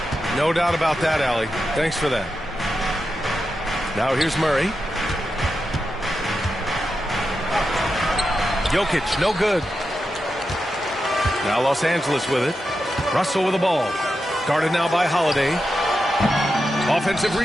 No doubt about that, Allie. Thanks for that. Now here's Murray. Jokic, no good. Now Los Angeles with it. Russell with the ball. Guarded now by Holiday. Offensive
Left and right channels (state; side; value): normal; both; correlation 0.89